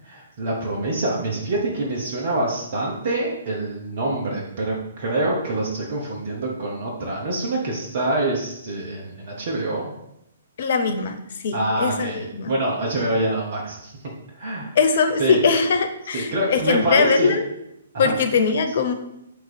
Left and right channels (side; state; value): both; inverted; correlation -0.57